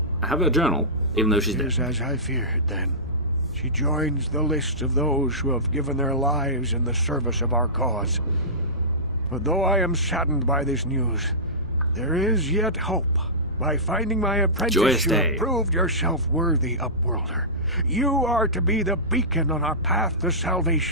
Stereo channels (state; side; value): normal; both; correlation -0.19